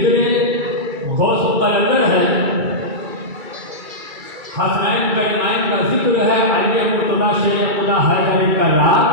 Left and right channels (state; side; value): late; left; 2.3 ms